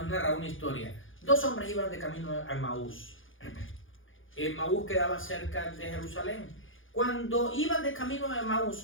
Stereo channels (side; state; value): right; late; 0.58 ms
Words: una historia. 2 hombres iban de camino a Emaús. Emaús quedaba cerca de Jerusalén. Cuando iban de camino a